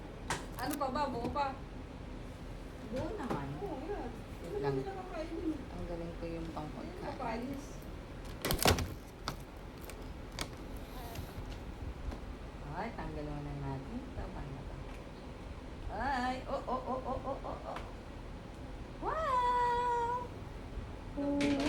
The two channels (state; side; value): identical; both; correlation 1.00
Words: Ano pa ba? Buo pa? Buo naman. Oo, yan. Hindi Lang. naman nakakainin eh. Ang galing ko yung Ayun, pangpagkain. kapalis. Ay, tanggal mo na natin. Tama na ba? Ay, oh. Wow! Wow!